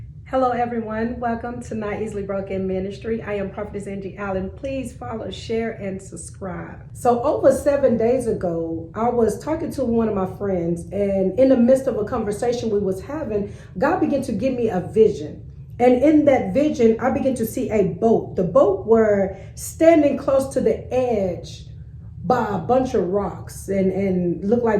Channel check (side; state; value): both; identical; correlation 1.00